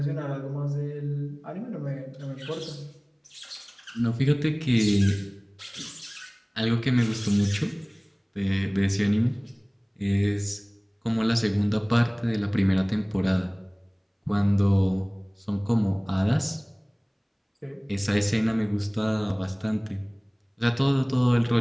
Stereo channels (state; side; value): identical; both; correlation 1.00